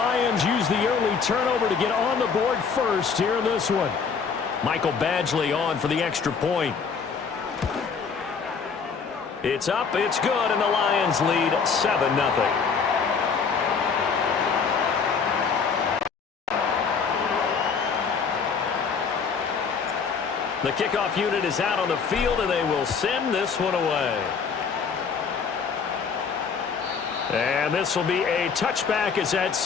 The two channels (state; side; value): quieter; right; 5.8 dB